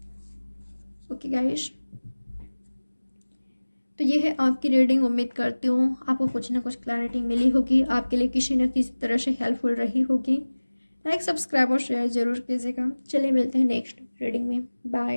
ओके गाइस, तो ये है आपकी रीडिंग। उम्मीद करती हूँ आपको कुछ ना कुछ क्लैरिटी मिली होगी, आपके लिए किसी न किसी तरह से हेल्पफुल रही होगी। लाइक, सब्सक्राइब और शेयर जरूर कीजिएगा। चलिए मिलते हैं नेक्स्ट रीडिंग में।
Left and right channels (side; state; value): both; inverted; correlation -1.00